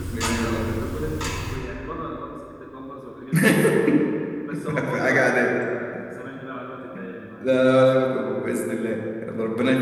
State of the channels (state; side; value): identical; both; correlation 1.00